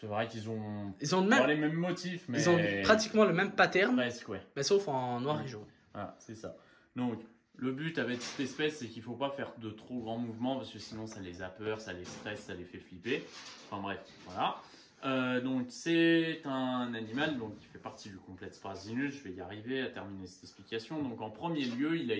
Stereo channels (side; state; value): both; identical; correlation 1.00